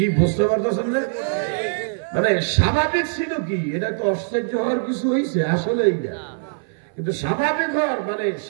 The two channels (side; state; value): left; silent; 60 dB below the other